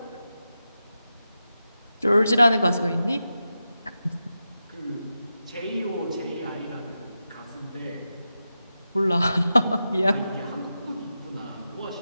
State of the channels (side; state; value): both; inverted; correlation -0.91